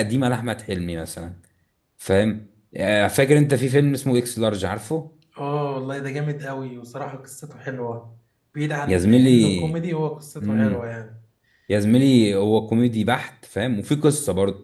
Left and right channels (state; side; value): identical; both; correlation 1.00